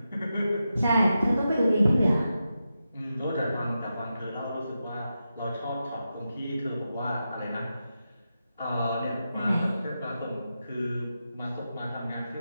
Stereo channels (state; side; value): inverted; both; correlation -0.89